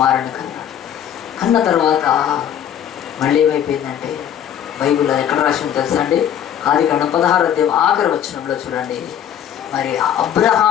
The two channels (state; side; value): quieter; right; 9.8 dB